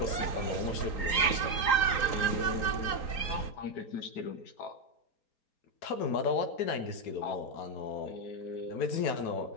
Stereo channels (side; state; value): right; late; 3.9 ms